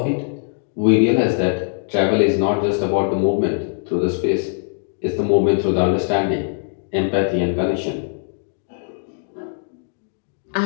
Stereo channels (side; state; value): right; silent; digital silence